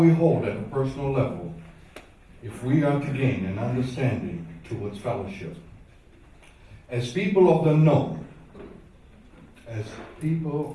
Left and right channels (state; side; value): identical; both; correlation 1.00